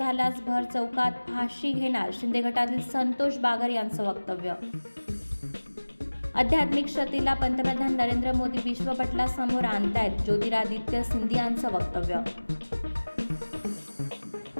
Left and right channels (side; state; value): both; inverted; correlation -1.00